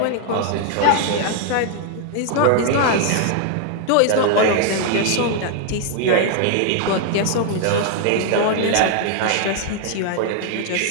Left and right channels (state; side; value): different; both; correlation 0.00